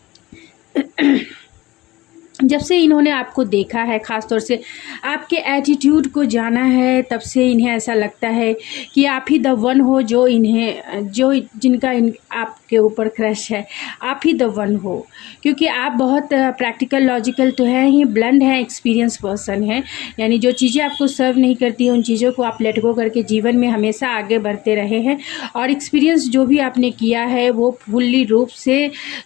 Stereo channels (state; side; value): quieter; right; 18.7 dB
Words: जब से इन्होंने आपको देखा है, ख़ास तौर से आपके एटीट्यूड को जाना है, तब से इन्हें ऐसा लगता है कि आप ही द वन हो, जो जिनका आपके ऊपर क्रश है, आप ही द वन हो। क्योंकि आप बहुत प्रैक्टिकल, लॉजिकल तो हैं ही, ब्लंड हैं, एक्सपीरियंस पर्सन हैं, यानी जो चीज़ें आपको सर्व नहीं करती हैं उन चीज़ों को आप लेट गो करके जीवन में हमेशा आगे बढ़ते रहे हैं, और एक्सपीरियंस जो भी आपने किया है वो फुल्ली रूप से